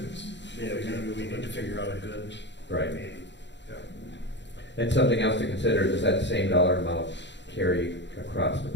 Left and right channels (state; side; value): late; right; 0.52 ms